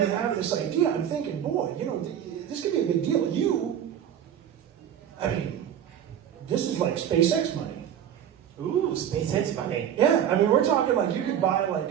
have this idea, I'm thinking, boy, you know, this could be a big deal. This is like SpaceX money. Ooh, SpaceX money. Yeah, I mean, we're talking like you could buy like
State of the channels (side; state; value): left; quieter; 9.7 dB